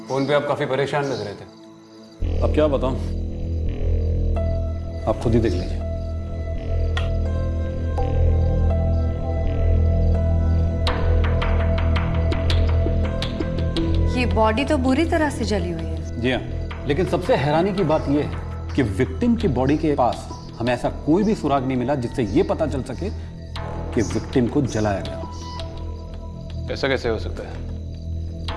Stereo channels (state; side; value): identical; both; correlation 1.00